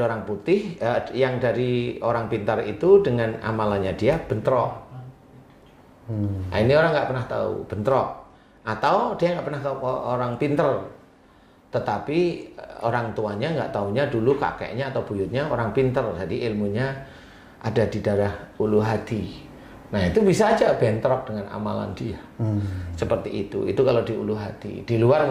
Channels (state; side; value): identical; both; correlation 1.00